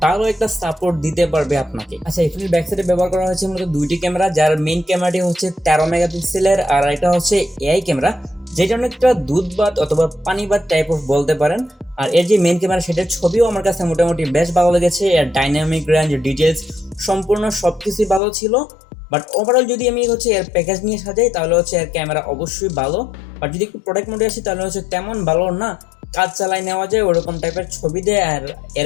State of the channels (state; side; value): drops out; right; at 18.2 s